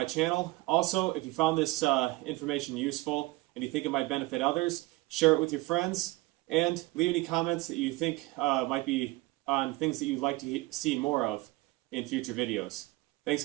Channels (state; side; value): quieter; left; 21.2 dB